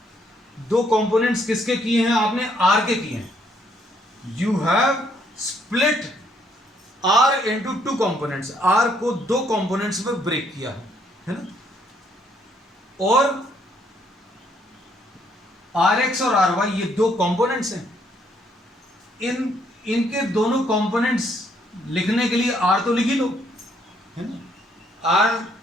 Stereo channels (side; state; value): both; normal; correlation 0.69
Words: दो कंपोनेंट्स किसके किए हैं आपने? R के किए हैं। You have split R into two components, R को दो कंपोनेंट्स में ब्रेक किया है ना। और RX और RY ये दो कंपोनेंट्स हैं, इनके दोनों कंपोनेंट्स लिखने के लिए R तो लिख ही लो, है ना। R,